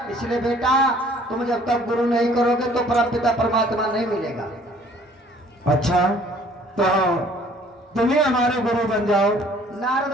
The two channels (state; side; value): normal; both; correlation 0.56